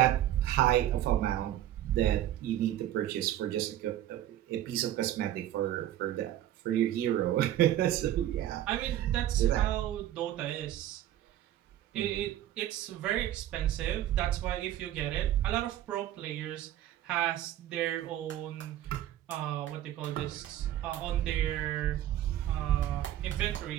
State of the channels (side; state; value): left; quieter; 12.7 dB